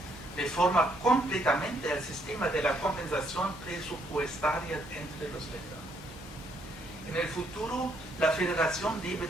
reforma completamente el sistema de la compensación presupuestaria entre los Länder. En el futuro, la federación debe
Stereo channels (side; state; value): both; normal; correlation 0.71